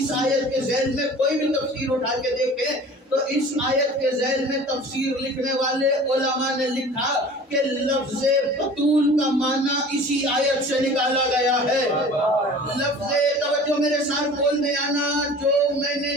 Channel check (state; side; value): normal; both; correlation 0.43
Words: آیت کے ذیل میں کوئی بھی تفسیر اٹھا کے دیکھیں تو اس آیت کے ذیل میں تفسیر لکھنے والے علماء نے لکھا کہ لفظ بطول کا معنی اسی آیت سے نکالا گیا ہے. لفظ توجہ میرے ساتھ بول دے آنا، جو میں